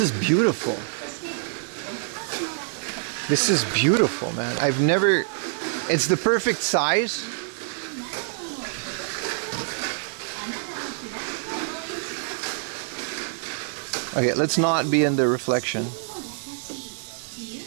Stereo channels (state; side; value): silent; left; digital silence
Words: beautiful. This is beautiful, man. I've never... It's the perfect size. Okay, let's not be in the reflection.